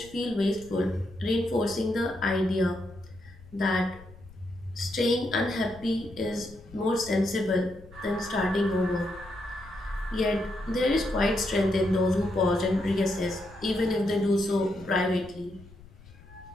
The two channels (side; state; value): left; noise; rumble, 21 dB below the sound